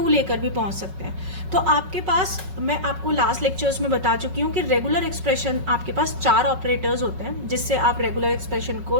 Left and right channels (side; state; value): left; late; 5.4 ms